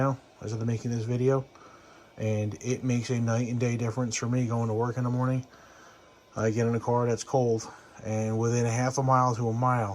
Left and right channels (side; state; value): both; identical; correlation 1.00